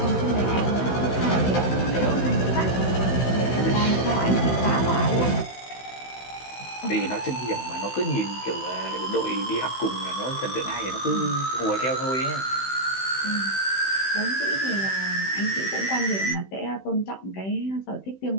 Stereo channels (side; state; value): right; late; 16 ms